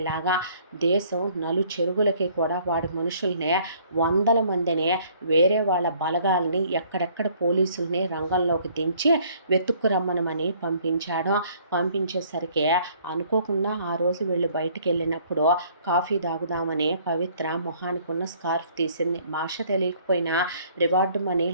దేశం చెరుగులకి కూడా వాడి మనుషుల్ని 100 మందిని వేరే వాళ్ళ బలగాల్ని ఎక్కడెక్కడ పోలీసుల్ని రంగంలోకి దించి వెతుక్కురమ్మనమని పంపించేసరికి అనుకోకుండా ఆ రోజు వీళ్ళు బయటికి వెళ్ళినప్పుడు కాఫీ తాగుదామని పవిత్ర మొహానికి ఉన్న స్కార్ఫ్ తీసింది. భాష తెలియకపోయినా రివార్డు మనీ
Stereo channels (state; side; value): inverted; both; correlation -0.59